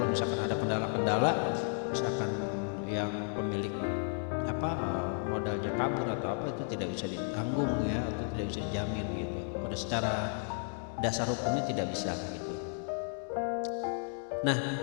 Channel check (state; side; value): silent; right; 55 dB below the other